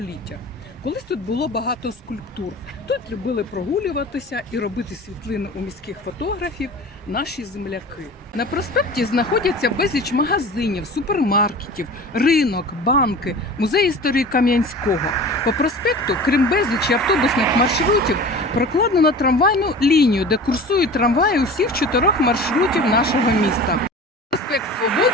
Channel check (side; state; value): both; normal; correlation 0.38